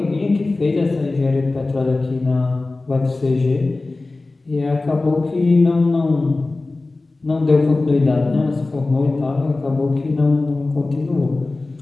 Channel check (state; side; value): quieter; right; 3.3 dB